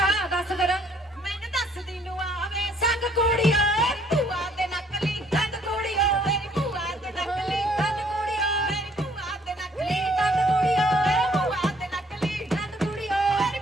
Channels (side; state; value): both; normal; correlation 0.63